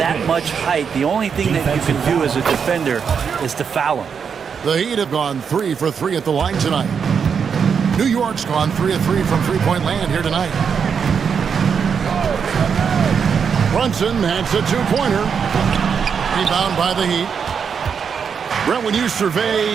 much height, the only thing that you can do as a defender is to foul him. The Heat have gone 3 for 3 at the line tonight. New York's gone 3 of 3 from three-point land here tonight. Brunson has a 2-pointer. Rebound by the Heat. Brent, when you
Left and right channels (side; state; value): left; quieter; 6.6 dB